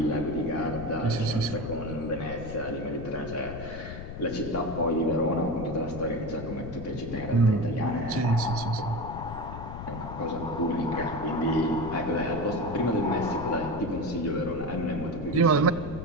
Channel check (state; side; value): noise; left; rumble, 9 dB below the sound